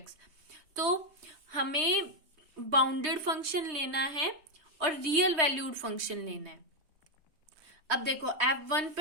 तो हमें बाउंडेड फंक्शन लेना है और रियल वैल्यूड फंक्शन लेना है। अब देखो F1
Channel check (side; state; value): left; late; 3.2 ms